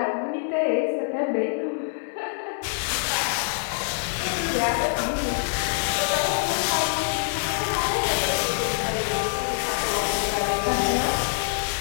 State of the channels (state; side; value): silent; right; 62 dB below the other